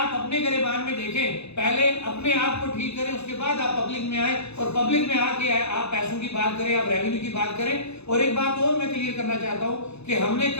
اپنے گریبان میں دیکھیں، پہلے اپنے آپ کو ٹھیک کریں، اس کے بعد آپ پبلک میں آئیں، اور پبلک میں آ کے آپ پیسوں کی بات کریں، آپ ریونیو کی بات کریں۔ اور ایک بات اور میں کلیئر کرنا چاہتا ہوں کہ ہم نے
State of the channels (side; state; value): right; late; 0.80 ms